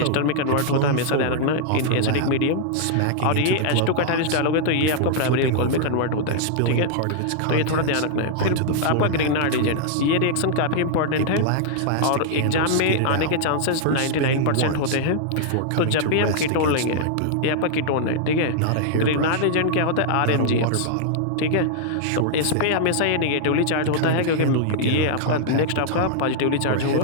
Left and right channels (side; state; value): both; different; correlation -0.01